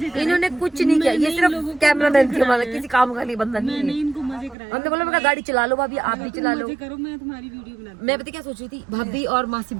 करे। इन्होंने कुछ नहीं किया, ये सिर्फ कैमरा मैन थी हमारा, किसी काम का नहीं बंदा नहीं मैंने है। इनको मजे कराए। हमने बोला मैं गाड़ी चला लो भाभी, आप भी चला लो। मजे करो, मैं तुम्हारी वीडियो बना मैं पता क्या सोच रही थी, भाभी और मासी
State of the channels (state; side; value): drops out; left; at 4.5 s